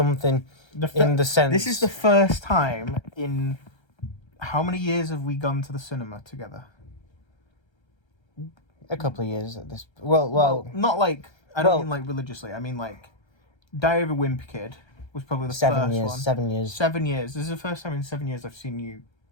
in the sense. This is the first time in how many years have we gone to the cinema together? A couple of years at this. Well, not like I don't mean like religiously. I mean like Diary of a Wimpy Kid was probably the 7 first years. one. 7 years. 7 years. This is the first time in 7 years I've seen you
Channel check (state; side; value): late; right; 1.3 ms